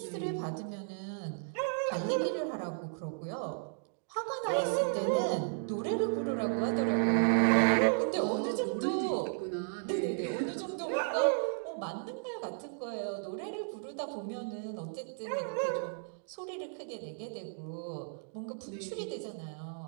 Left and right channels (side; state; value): left; silent; digital silence